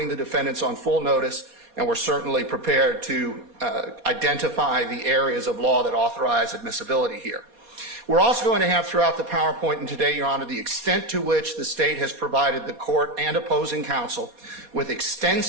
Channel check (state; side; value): late; left; 4.2 ms